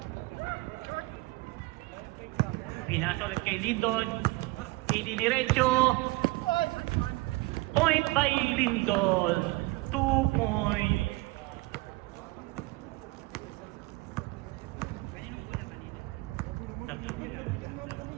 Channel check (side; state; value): left; quieter; 22.2 dB